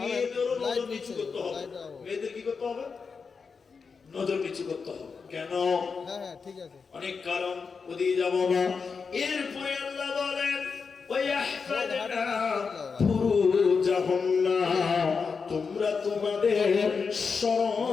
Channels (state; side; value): quieter; right; 5.3 dB